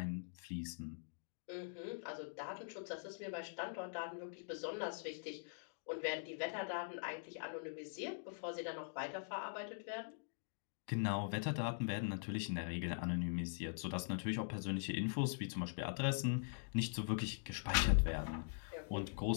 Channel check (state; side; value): silent; right; digital silence